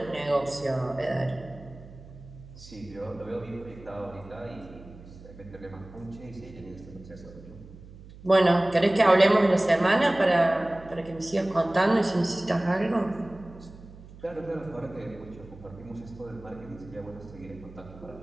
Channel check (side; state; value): right; noise; hum, 18 dB below the sound